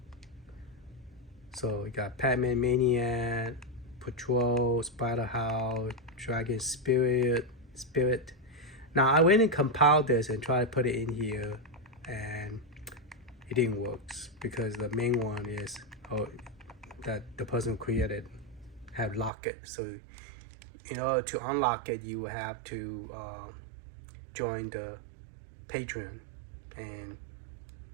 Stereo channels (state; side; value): drops out; left; at 19.3 s